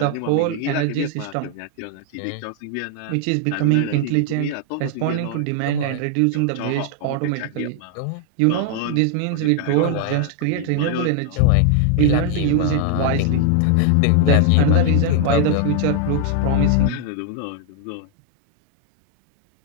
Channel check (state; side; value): different; both; correlation 0.00